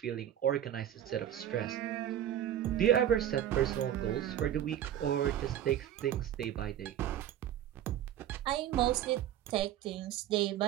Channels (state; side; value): quieter; left; 11.2 dB